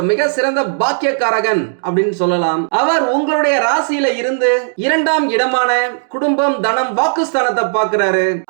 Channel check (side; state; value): left; silent; digital silence